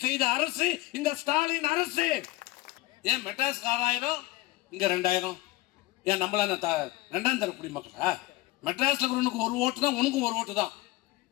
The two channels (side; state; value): right; quieter; 19.2 dB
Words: செய்த அரசு இந்த ஸ்டாலின் அரசு. ஏன் மெட்ராஸ் 6000 இங்க 2000? ஏன் நம்மள ரெண்டாம் தர குடிமக்களா? மெட்ராஸ்ல உனக்கு ஒரு ஓட்டு தான், உனக்கும் ஒரு ஓட்டு தான்.